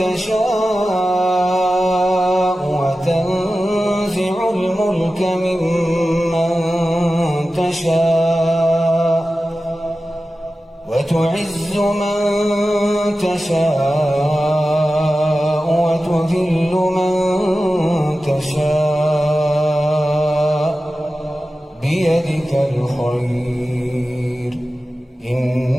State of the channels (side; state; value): both; normal; correlation 0.94